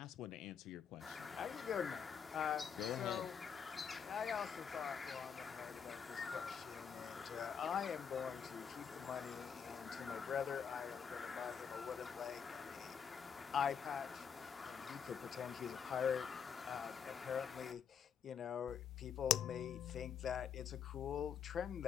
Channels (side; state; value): right; quieter; 7.2 dB